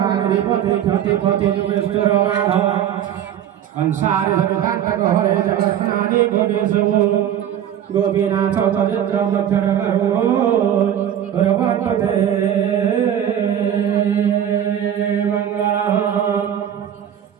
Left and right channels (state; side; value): quieter; left; 10.1 dB